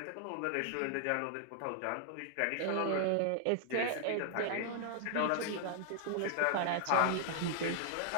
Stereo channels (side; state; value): both; different; correlation -0.01